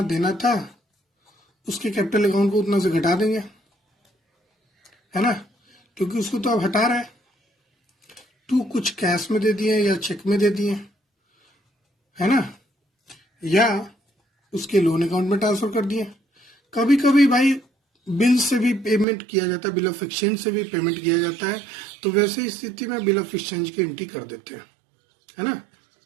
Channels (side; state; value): left; drops out; at 19.1 s